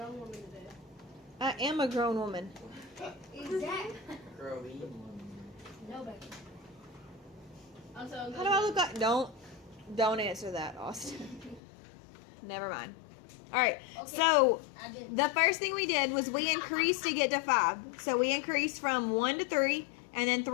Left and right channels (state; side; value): drops out; right; at 11.6 s